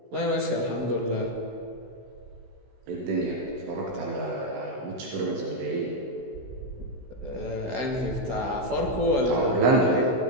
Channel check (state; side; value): late; left; 16 ms